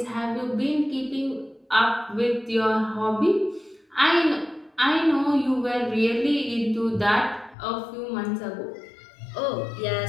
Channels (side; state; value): right; drops out; at 7.6 s